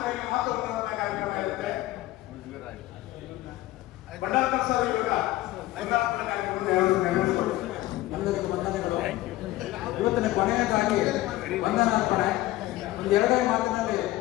ಮಾತುಗಳನ್ನ ಕಾರ್ಯಕ್ರಮ ಇರುತ್ತೆ. ಬಂಡಾರ್ಕರ್ ಸರ್ ಇವಾಗ ನೈರಾಪುರ ಕಾರ್ಯಕ್ರಮವನ್ನು ಎಲ್ಲರಿಗೂ ವಂದನೆಗಳು. ಇವತ್ತಿನ ಕೊನೆಯದಾಗಿ ವಂದನಾರ್ಪಣೆ ಒಂದು 2 ಮಾತಿನಲ್ಲಿ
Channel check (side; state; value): right; quieter; 16.7 dB